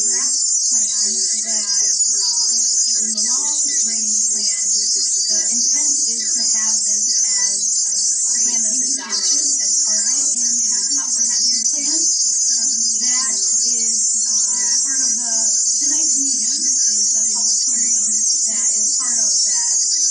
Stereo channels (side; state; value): both; identical; correlation 1.00